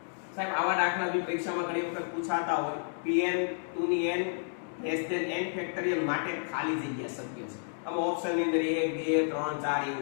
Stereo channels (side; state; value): right; silent; digital silence